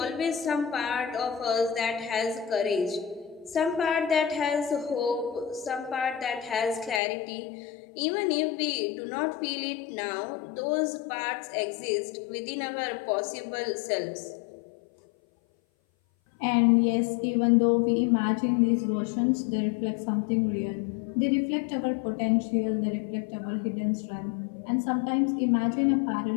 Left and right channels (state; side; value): drops out; right; at 7.0 s